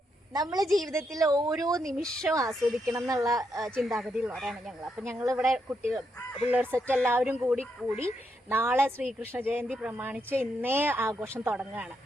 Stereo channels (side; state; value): both; normal; correlation 0.80